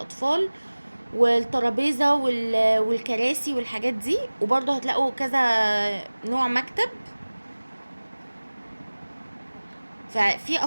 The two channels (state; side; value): inverted; both; correlation -1.00